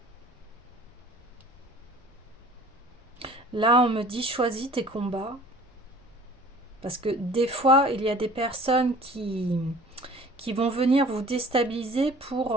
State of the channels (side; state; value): both; normal; correlation 0.48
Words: Là, on me dit choisis tes combats. Parce que des fois, il y a des personnes qui vont venir vous déstabiliser